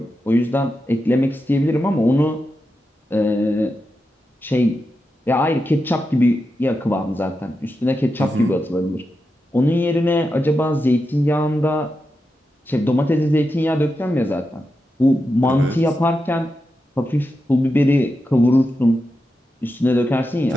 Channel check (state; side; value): normal; both; correlation 0.88